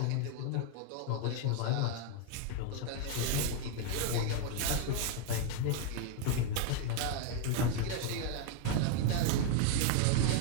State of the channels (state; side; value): different; both; correlation 0.01